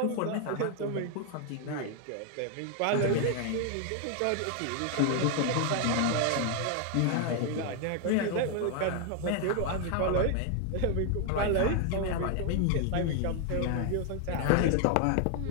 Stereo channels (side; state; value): both; different; correlation 0.00